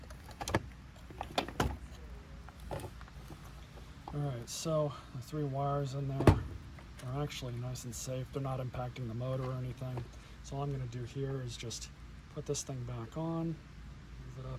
Alright, so the 3 wires in there are actually nice and safe. They're not impacting the motor or anything. So all I'm going to do here is just put this thing back on, move it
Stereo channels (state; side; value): identical; both; correlation 1.00